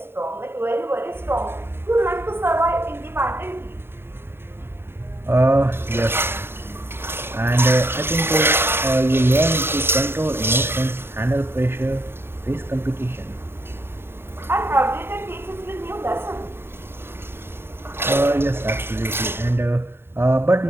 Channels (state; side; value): late; left; 0.11 ms